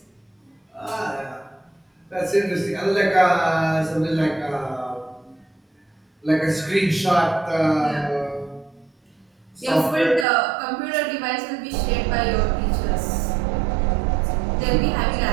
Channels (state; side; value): drops out; left; at 10.2 s